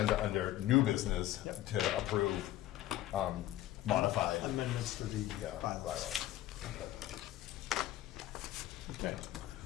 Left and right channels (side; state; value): right; quieter; 14.2 dB